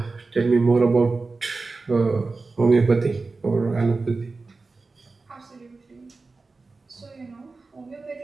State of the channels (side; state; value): left; quieter; 3.8 dB